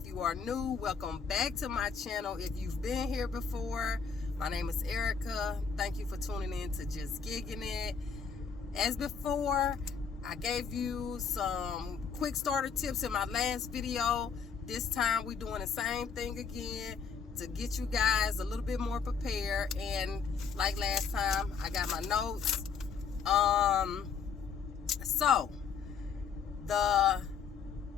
you are new, welcome back to my channel. If you've been here before, my name is Erica. Thank you for tuning in to Just Gigging It. As before, I gave you some quick starter tips in my last video. This time we're doing the same thing again to get you guys a little bit more prepared. And like last time, I got my notes. So the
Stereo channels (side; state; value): right; quieter; 6.2 dB